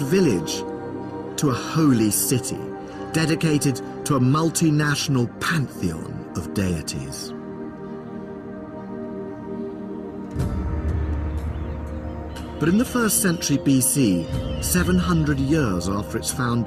to a holy city, dedicated to a multinational pantheon of deities. But in the 1st century BC, 700 years after its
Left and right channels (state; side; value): identical; both; correlation 1.00